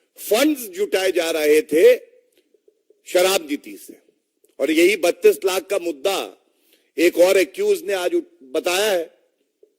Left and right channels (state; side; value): identical; both; correlation 1.00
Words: फंड्स जुटाए जा रहे थे शराब नीति से, और यही 32 लाख का मुद्दा एक और एक्यूज ने आज बताया है।